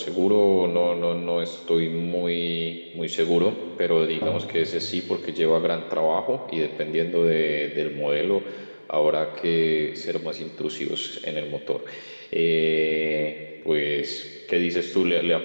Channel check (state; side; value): inverted; both; correlation -1.00